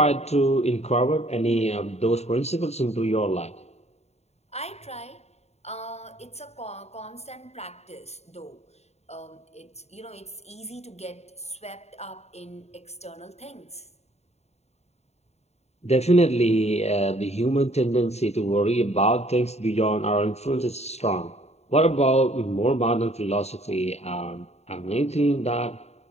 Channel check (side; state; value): right; late; 0.31 ms